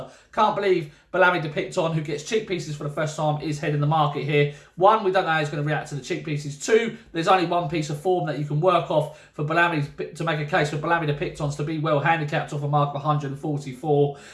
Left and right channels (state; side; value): identical; both; correlation 1.00